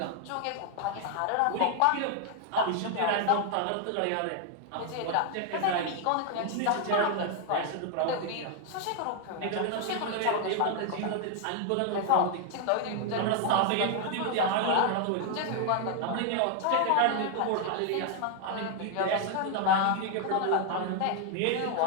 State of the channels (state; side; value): different; both; correlation 0.00